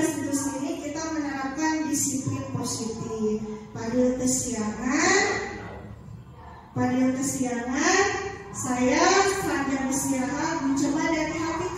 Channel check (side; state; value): both; identical; correlation 1.00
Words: ini kita menerapkan disiplin positif. Fadil kesiangan, saya sambil istirahat mencoba dari hati